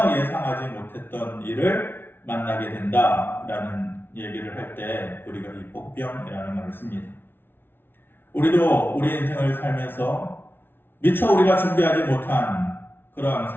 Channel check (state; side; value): late; right; 0.11 ms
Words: 예상하지 못했던 일을 만나게 된다라는 얘기를 할 때 우리가 이 복병이라는 말을 씁니다. 우리도 우리 인생을 살면서 미처 우리가 준비하지 못한 그런